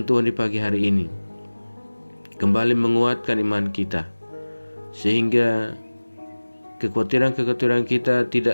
Tuhan di pagi hari ini kembali menguatkan iman kita, sehingga kekhawatiran-kekhawatiran kita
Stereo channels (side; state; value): both; inverted; correlation -1.00